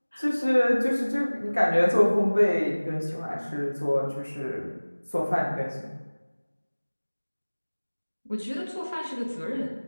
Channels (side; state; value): both; inverted; correlation -1.00